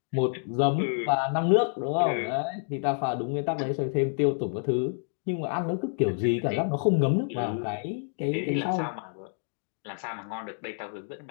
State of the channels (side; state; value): right; silent; digital silence